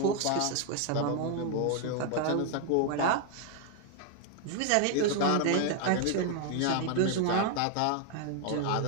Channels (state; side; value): different; both; correlation 0.00